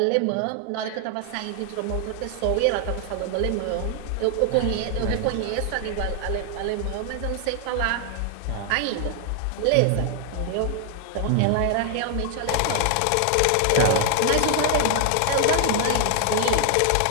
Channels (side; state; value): both; different; correlation 0.00